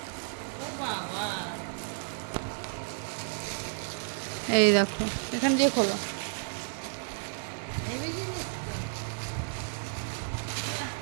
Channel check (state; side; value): silent; left; digital silence